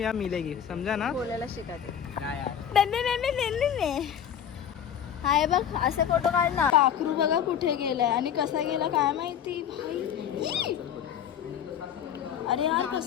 यहाँ मिलेगी, समझा ना. बोलायला शिकाते. हाय बघ असे फोटो काढ ना. पाखरू बघा कुठे गेलाय आणि कसा गेला काय माहिती भाई. अरे यार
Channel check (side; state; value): right; quieter; 9.1 dB